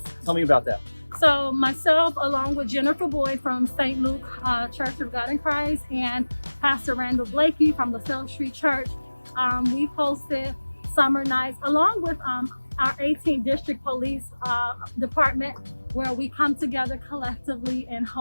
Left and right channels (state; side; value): inverted; both; correlation -1.00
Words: Tell me about that. So myself, along with Jennifer Boyd from St. Luke Church of God in Christ and Pastor Randall Blakey from the South Street Church, we hosted summer nights along with our 18th District Police Department, where we come together collectively and